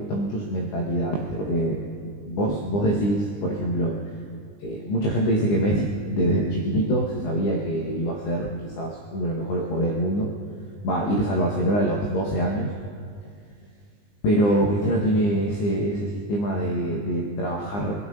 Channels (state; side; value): late; right; 20 ms